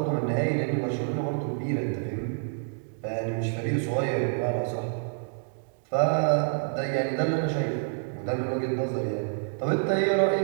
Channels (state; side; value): silent; left; digital silence